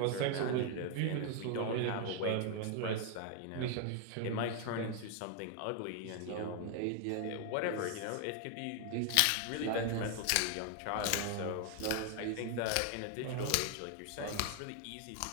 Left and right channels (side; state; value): both; different; correlation 0.00